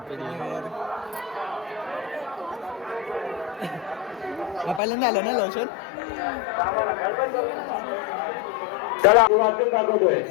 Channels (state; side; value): drops out; right; at 4.8 s